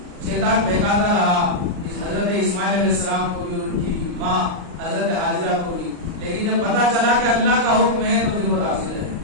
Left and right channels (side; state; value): left; late; 39 ms